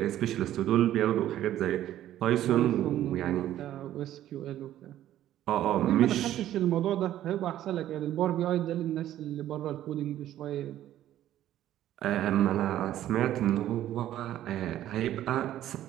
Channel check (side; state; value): left; quieter; 12.6 dB